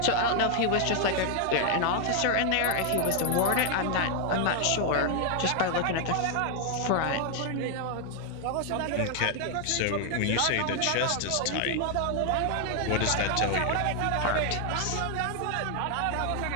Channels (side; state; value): both; different; correlation 0.00